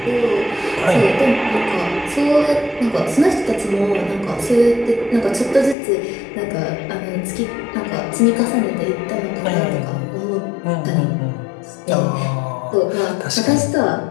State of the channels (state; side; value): drops out; right; at 5.8 s